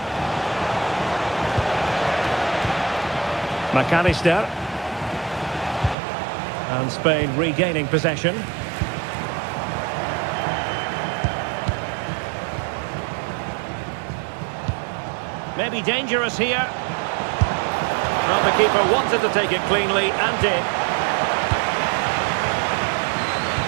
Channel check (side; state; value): left; drops out; at 6.0 s